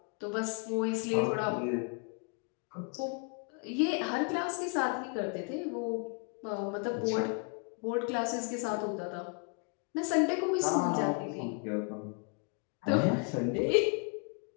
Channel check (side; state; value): right; quieter; 34.7 dB